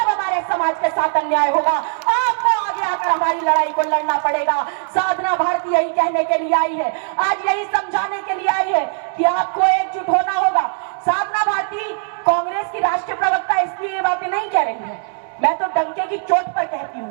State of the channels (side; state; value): left; silent; digital silence